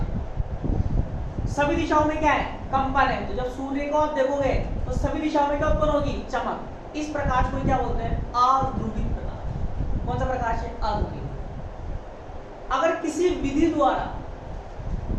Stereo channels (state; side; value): identical; both; correlation 1.00